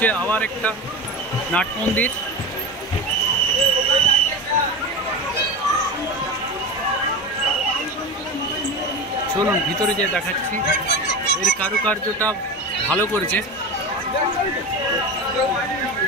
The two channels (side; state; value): both; normal; correlation 0.25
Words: আবার একটা নাট মন্দির। চলুন ভিতরে যে দেখাচ্ছি, এর কারুকার্যটা ভালো করেছে।